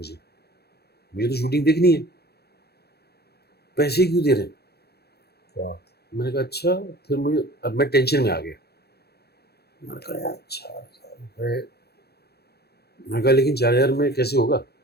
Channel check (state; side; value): late; right; 0.47 ms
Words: मुझे तो शूटिंग देखनी है, पैसे क्यों दे रहे हैं. वाह. मैंने कहा अच्छा. फिर मुझे, अब मैं टेंशन में आ गया. मैंने कहा यार 4,000 रुपये. मैंने कहा लेकिन 4,000 में कैसे होगा.